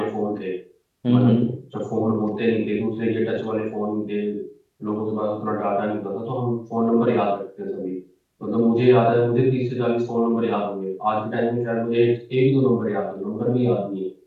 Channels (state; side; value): identical; both; correlation 1.00